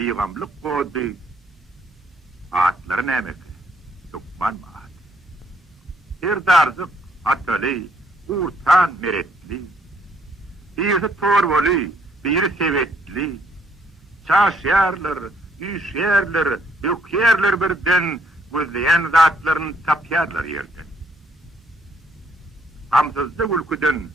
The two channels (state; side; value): normal; both; correlation 0.68